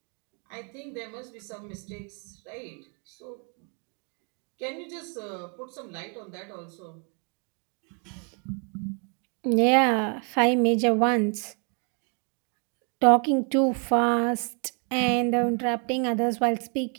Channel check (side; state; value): left; quieter; 37.8 dB